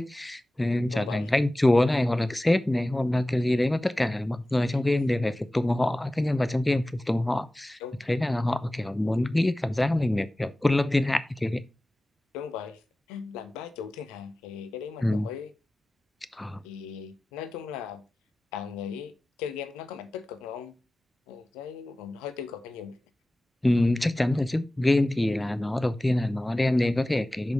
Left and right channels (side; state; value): both; normal; correlation 0.97